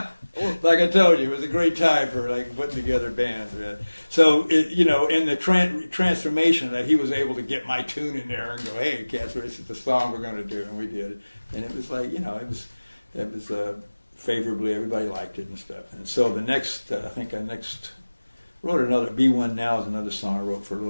Like I told you, it was a great time for like putting together bands, man. So in the transformation that he was able to get my tune in there and go, "Hey, Casper, this is the song we're going to do," and we did it, and it was like it was favorably, everybody liked it and stuff. And so the next, wrote another B1 Now is another song I wrote for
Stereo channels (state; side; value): inverted; both; correlation -1.00